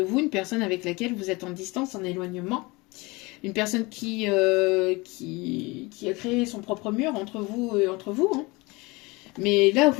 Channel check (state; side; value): quieter; right; 24.3 dB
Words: une personne avec laquelle vous êtes en distance, en éloignement. Une personne qui a créé son propre mur entre vous et entre vous. Hein. Mais là,